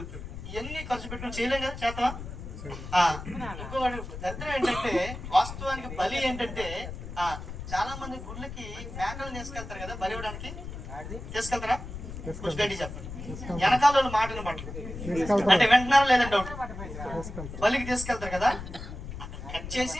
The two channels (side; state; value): left; noise; rumble, 9 dB below the sound